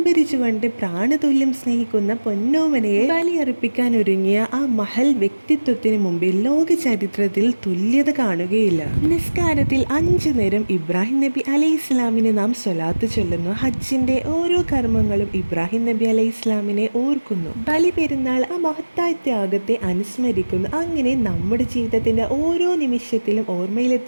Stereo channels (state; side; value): inverted; both; correlation -1.00